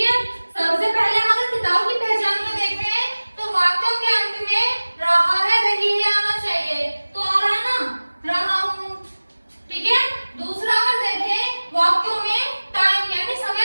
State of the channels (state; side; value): inverted; both; correlation -1.00